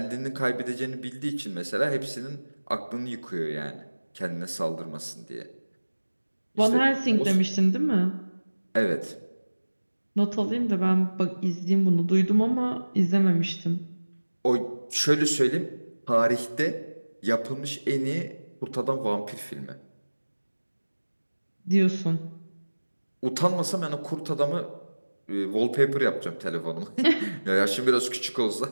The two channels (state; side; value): inverted; both; correlation -1.00